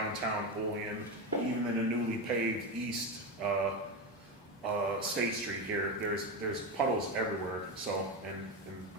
Olean, even in the newly paved east State Street here. There's puddles everywhere. So, and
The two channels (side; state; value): both; normal; correlation 0.16